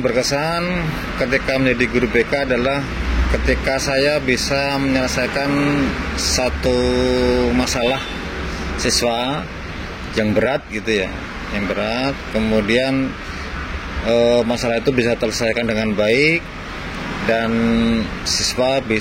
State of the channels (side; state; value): both; identical; correlation 1.00